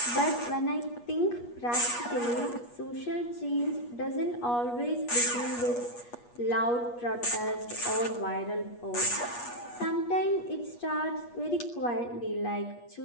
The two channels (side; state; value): right; late; 8.3 ms